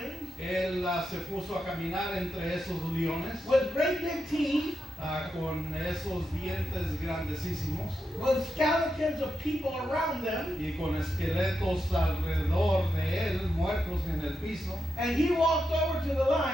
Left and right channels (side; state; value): both; normal; correlation 0.87